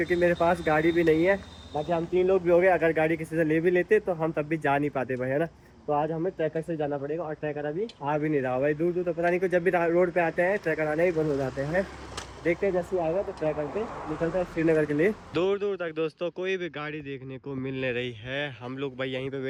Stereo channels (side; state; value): both; identical; correlation 1.00